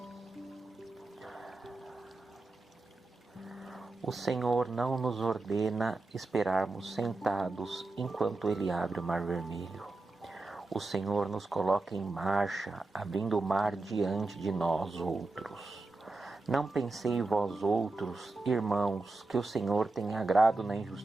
O Senhor não nos ordena esperarmos sentados enquanto Ele abre o mar vermelho. O Senhor nos coloca em marcha, abrindo o mar diante de nós outros. Não pensei vós outros, irmãos, que o Senhor tem agrado na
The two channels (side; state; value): left; quieter; 3.2 dB